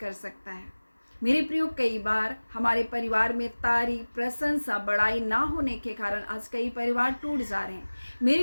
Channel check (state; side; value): inverted; both; correlation -1.00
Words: सकता है। मेरे प्रियो, कई बार हमारे परिवार में तारीफ, प्रशंसा, बड़ाई ना होने के कारण आज कई परिवार टूट जा रहे हैं।